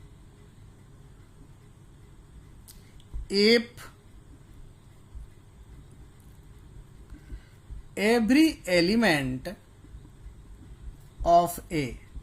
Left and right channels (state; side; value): identical; both; correlation 1.00